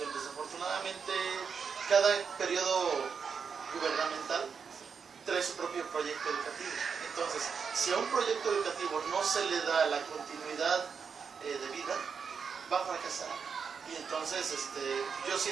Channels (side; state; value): left; quieter; 6.1 dB